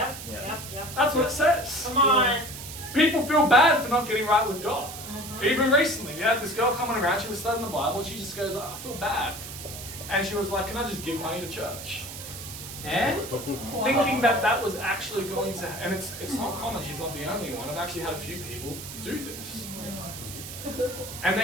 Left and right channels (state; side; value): noise; right; hiss, 11 dB below the sound